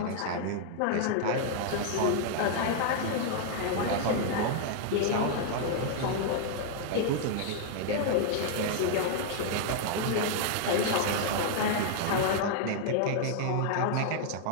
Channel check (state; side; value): different; both; correlation 0.00